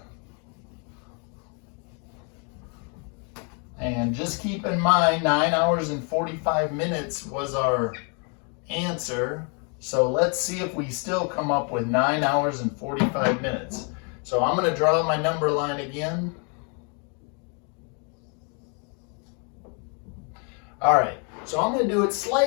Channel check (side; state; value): right; quieter; 37.4 dB